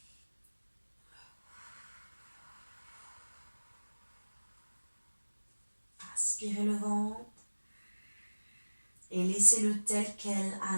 Aspirez le ventre et laissez-le tel quel à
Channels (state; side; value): inverted; both; correlation -1.00